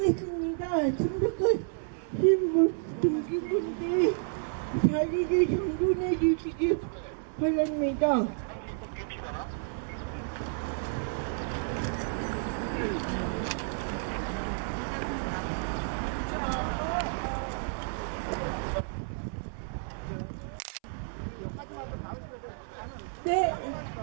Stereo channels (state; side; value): silent; left; 57 dB below the other